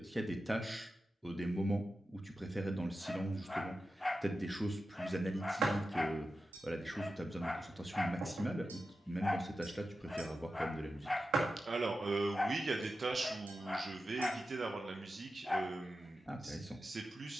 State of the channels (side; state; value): both; normal; correlation 0.92